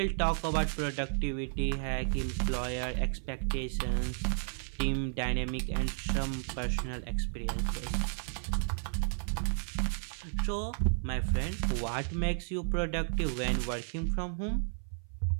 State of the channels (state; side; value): silent; left; 56 dB below the other